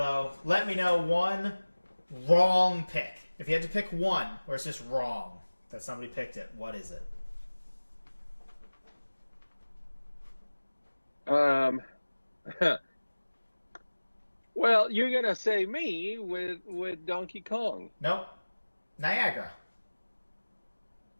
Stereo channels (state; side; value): inverted; both; correlation -1.00